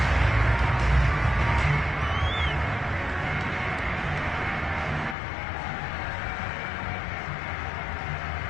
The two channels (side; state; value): right; drops out; at 5.2 s